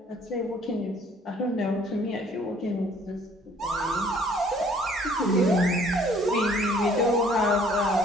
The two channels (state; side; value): normal; both; correlation 0.58